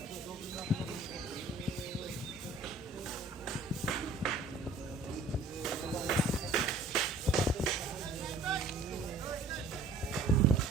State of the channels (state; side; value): quieter; left; 3.2 dB